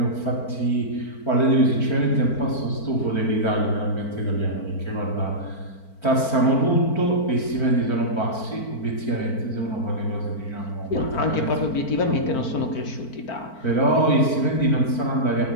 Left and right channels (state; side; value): late; right; 4.4 ms